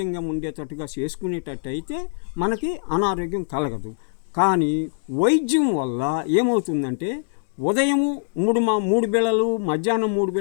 ఉండేటట్టుగా చేసుకునేటట్టు అయితే మనకి అనారోగ్యం కలగదు. కానీ వైద్యం వల్ల ఏమవుతుందంటే ఉదయము 3 బిళ్ళలు, మధ్యాహ్నం 3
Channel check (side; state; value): right; silent; digital silence